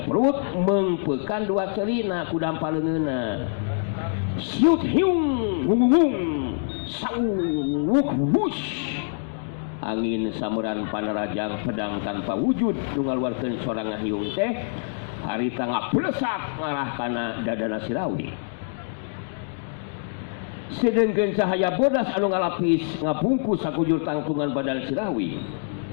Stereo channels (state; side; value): silent; right; digital silence